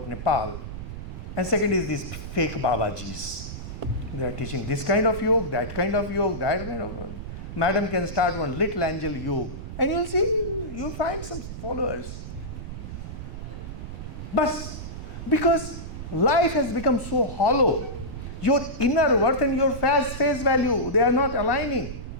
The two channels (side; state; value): right; noise; rumble, 9 dB below the sound